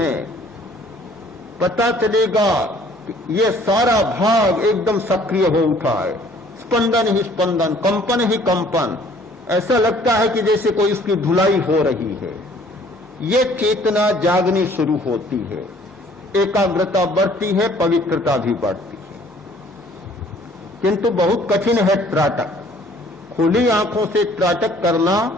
पता चलेगा ये सारा भाग एकदम सक्रिय हो उठा है, स्पंदन ही स्पंदन, कंपन ही कंपन, ऐसा लगता है कि जैसे कोई उसकी धुलाई हो रही है। ये चेतना जागनी शुरू होती है, एकाग्रता बढ़ती है, पवित्रता भी बढ़ती है। किंतु बहुत कठिन है त्राटक। खुली आंखों से त्राटक करना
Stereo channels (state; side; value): normal; both; correlation 0.57